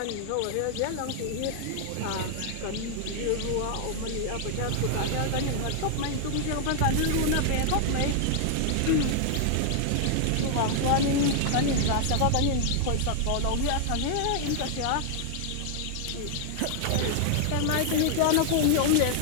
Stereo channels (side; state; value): both; different; correlation 0.00